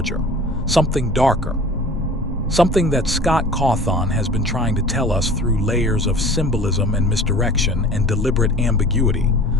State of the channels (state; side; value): normal; both; correlation 0.43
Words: something darker, something that Scott Cawthon has been trying to tell us through layers of symbolism and misdirection and deliberate ambiguity.